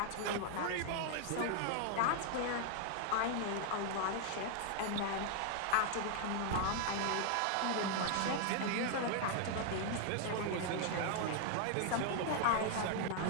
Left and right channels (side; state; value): both; different; correlation 0.00